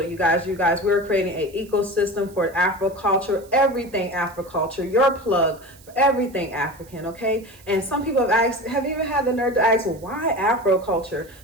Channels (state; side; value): noise; right; hiss, 25 dB below the sound